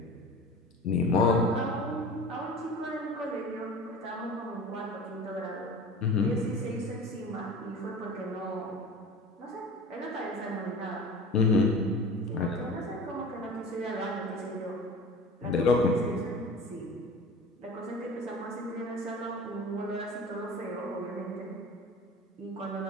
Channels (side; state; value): both; normal; correlation 0.37